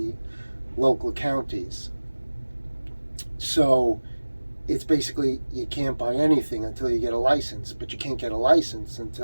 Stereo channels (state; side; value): inverted; both; correlation -1.00